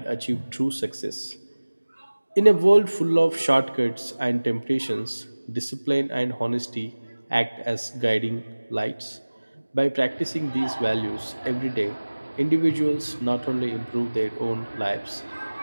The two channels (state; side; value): inverted; both; correlation -1.00